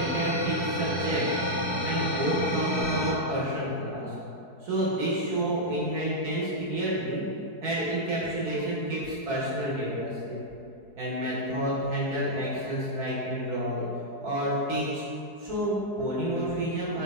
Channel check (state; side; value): late; left; 4.7 ms